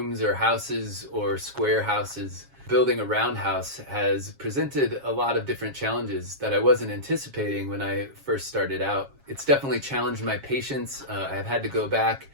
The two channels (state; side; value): late; left; 7.3 ms